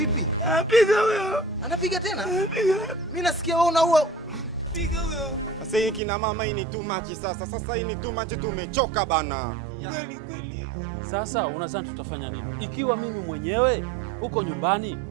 Anapiga huyo. Anapiga tena? Anapiga. Mimi nasikia wewe unaua. Piga huyo. Sasa hii kina mama hii ni too much sasa. Sasa hii ni too much, tumechoka bana. Kweli. Sasa unadhani tutafanya nini? Ikiwa mimi mwenyewe huko nyumbani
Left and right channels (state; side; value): drops out; left; at 6.0 s